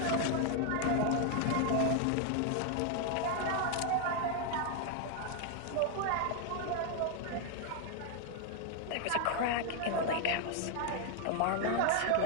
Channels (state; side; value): different; both; correlation 0.00